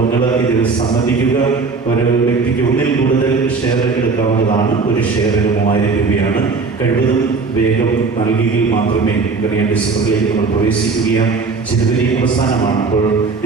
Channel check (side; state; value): left; quieter; 4.4 dB